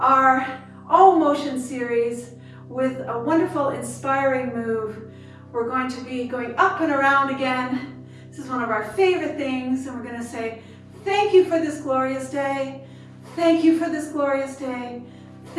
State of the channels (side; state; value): both; identical; correlation 1.00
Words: OmMotion series with a wonderful, inspiring move. We're going to be going up and around again. This is one of our favorite things, and we're going to say, thank you for this glorious day. Thank you for this glorious day.